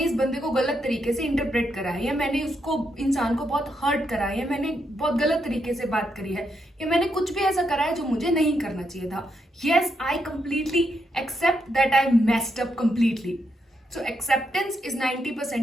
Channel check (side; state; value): both; normal; correlation 0.80